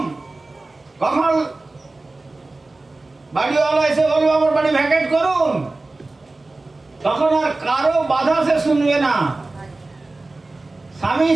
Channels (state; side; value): quieter; left; 3.2 dB